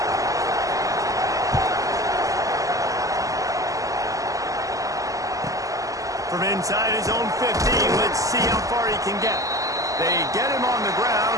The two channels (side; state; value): left; late; 0.16 ms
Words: From inside his own 15, let's see how far he can get. They get him on the